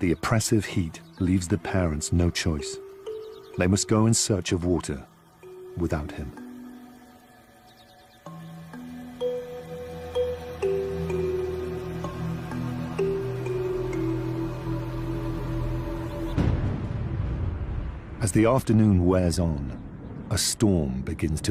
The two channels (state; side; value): identical; both; correlation 1.00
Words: oppressive heat leaves the parents no choice. They must go in search of water without him. As the afternoon wears on, a storm begins